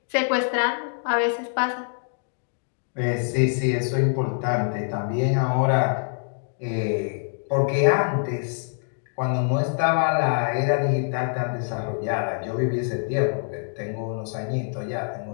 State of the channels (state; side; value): silent; right; digital silence